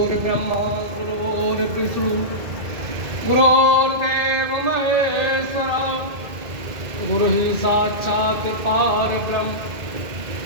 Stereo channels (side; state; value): left; late; 2.1 ms